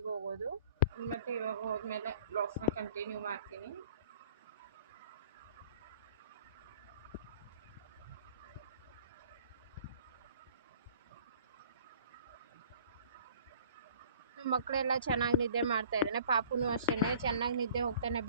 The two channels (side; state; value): both; inverted; correlation -0.51